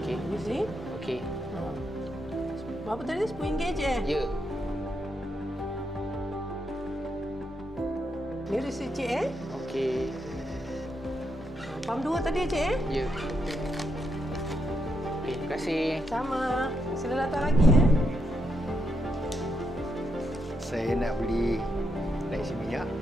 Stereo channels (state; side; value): normal; both; correlation 0.80